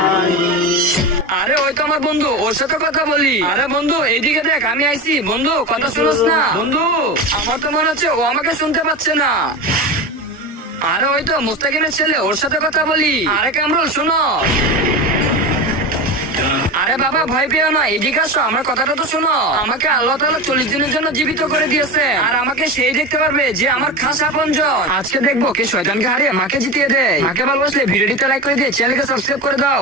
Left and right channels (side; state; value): both; normal; correlation 0.25